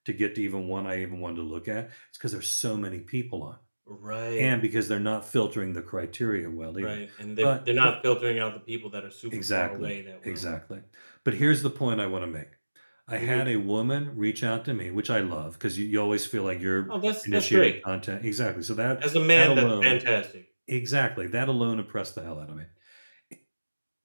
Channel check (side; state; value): both; inverted; correlation -1.00